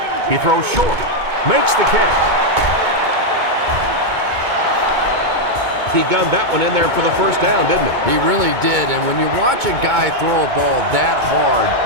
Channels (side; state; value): left; late; 2.2 ms